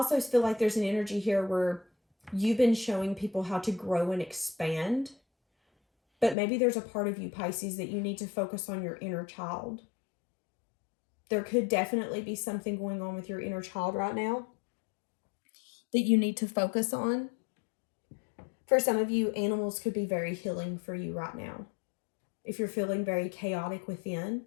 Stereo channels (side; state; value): right; drops out; at 6.4 s